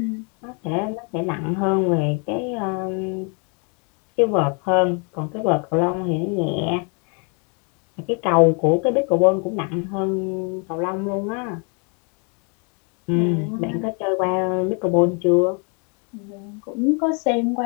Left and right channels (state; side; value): quieter; right; 36.4 dB